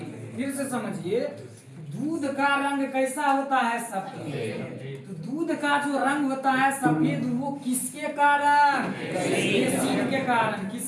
फिर से समझिए, दूध का रंग कैसा होता है? सफेद। तो दूध का जो रंग होता है सफेद, वो किसके कारण? केसीन के कारण।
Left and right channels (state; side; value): identical; both; correlation 1.00